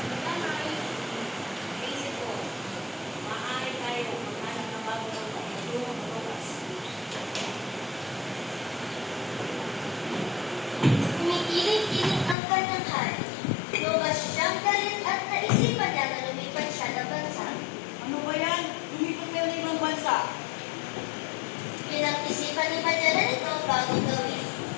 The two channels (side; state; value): right; drops out; at 12.4 s